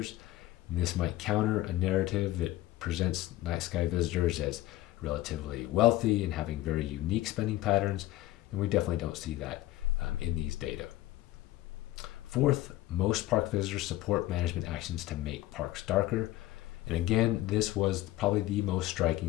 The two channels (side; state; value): right; quieter; 15.9 dB